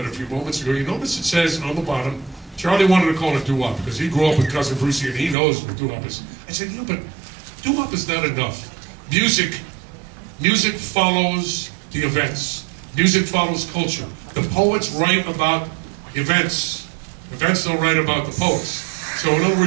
a few moments ago, you notice it says on the bottom, Charlie wanted to call it doo-wop because he grew up with Cousin Brucie and he knows what doo-wop is. I said, yeah, but doo-wop is not enough. Music follows the events. Music follows culture. The poets write about events. Events don't write about the poets. So in other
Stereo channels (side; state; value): left; drops out; at 5.4 s